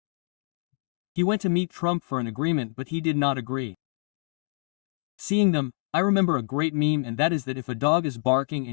He went to meet Trump for an agreement but he did not agree. Seeing them, I remember a great meme and that is that if a dog is barking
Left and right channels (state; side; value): quieter; right; 35.9 dB